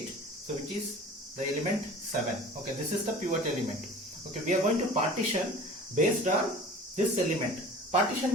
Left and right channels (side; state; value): both; normal; correlation 0.41